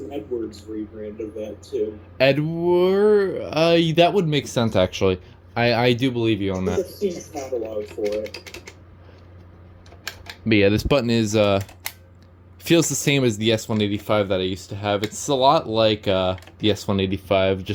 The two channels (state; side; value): identical; both; correlation 1.00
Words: Edwards rebrand of that too. Edward, that would make sense actually. I do believe you on that. I've seen a catalog for it. But yeah, this button is feels the same as the S185 that I used to have. It's a lot like the S185,